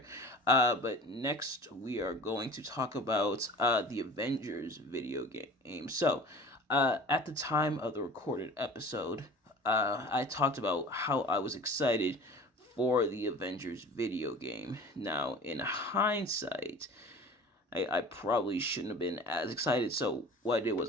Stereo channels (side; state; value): both; normal; correlation 0.42